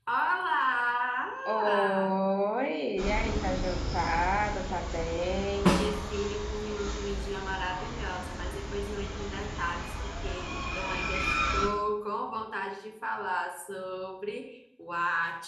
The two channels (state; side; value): identical; both; correlation 1.00